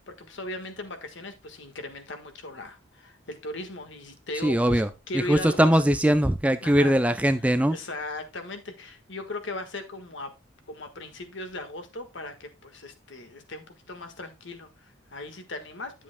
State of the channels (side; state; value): both; normal; correlation 0.84